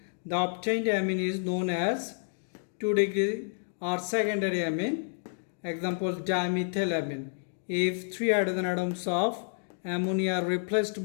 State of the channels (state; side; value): silent; right; digital silence